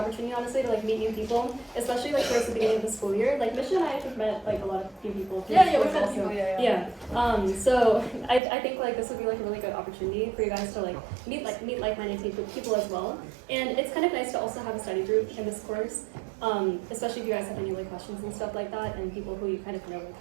honestly, to meet new people, especially towards the beginning of the school year. Misha and I have met a lot of new people. Yeah, we've met people. Yeah. So I think this would be a really good opportunity for you guys to meet like-minded people as well. And it's kind of nice to also have a study group in this course, especially if you guys have any questions and stuff like that, and people who you kind of know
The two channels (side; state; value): left; drops out; at 8.4 s